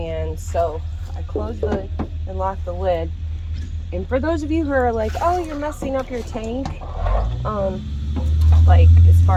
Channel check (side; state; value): both; identical; correlation 1.00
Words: so I close the and lock the lid. And for those of you who are like, oh, you're messing up your tank, like as